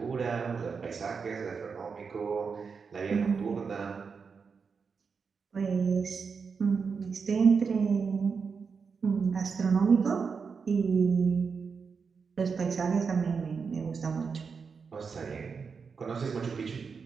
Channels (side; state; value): left; quieter; 5.5 dB